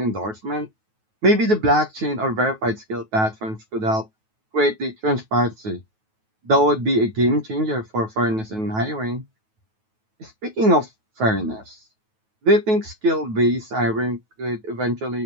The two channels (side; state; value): left; late; 9.3 ms